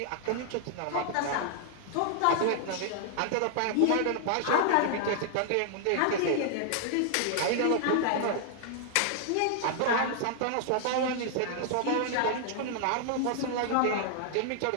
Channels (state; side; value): different; both; correlation -0.01